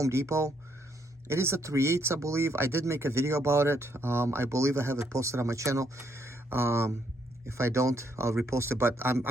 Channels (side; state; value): both; normal; correlation 0.73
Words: Depot. It is a 3/8, I believe. I did make a video about it. I believe I have it posted on my channel. If I don't, I'll repost it, but